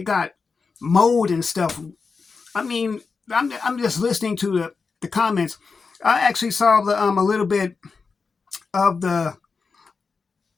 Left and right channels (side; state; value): right; quieter; 4.8 dB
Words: got mold and stuff. I mean, I'm just listening to the comments. I actually saw a little bit of the